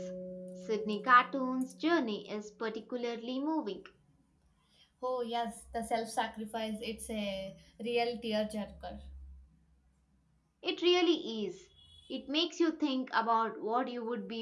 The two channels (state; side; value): identical; both; correlation 1.00